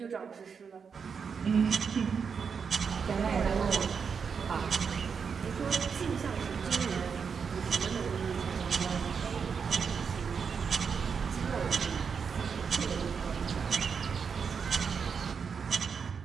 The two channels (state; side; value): quieter; left; 6.2 dB